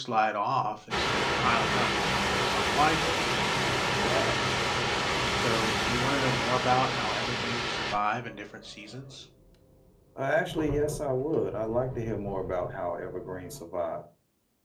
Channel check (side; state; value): both; identical; correlation 1.00